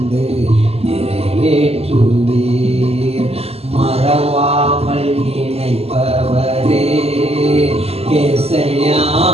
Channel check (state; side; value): late; left; 0.29 ms